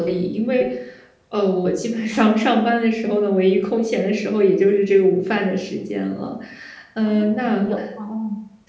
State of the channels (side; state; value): both; identical; correlation 1.00